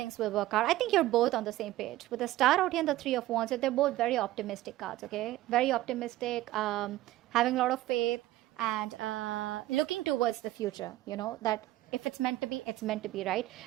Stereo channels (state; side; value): quieter; left; 15.8 dB